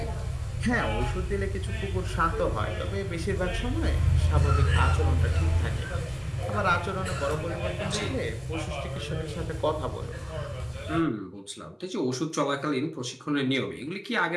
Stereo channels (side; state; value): both; identical; correlation 1.00